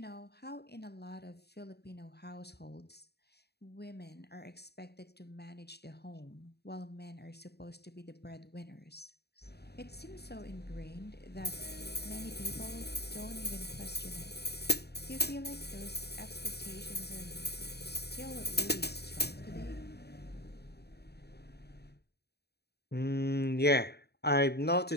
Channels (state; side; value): late; right; 0.48 ms